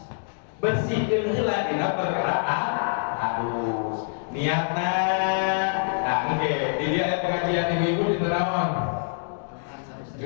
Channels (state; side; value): silent; right; digital silence